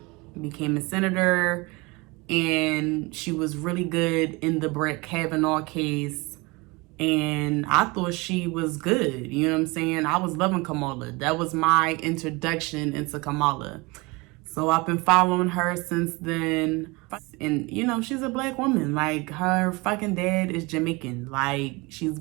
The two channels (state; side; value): quieter; left; 25.5 dB